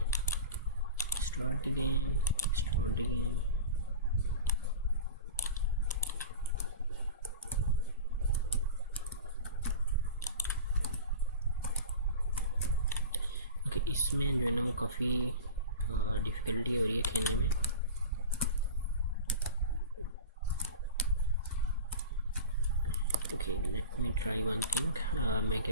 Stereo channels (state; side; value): inverted; both; correlation -0.32